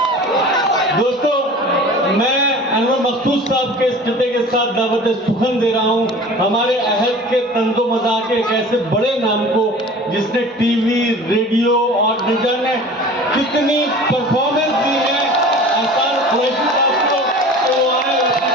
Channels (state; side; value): normal; both; correlation 0.41